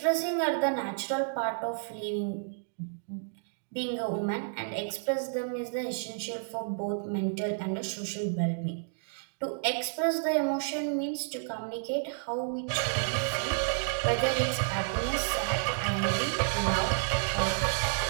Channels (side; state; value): left; silent; digital silence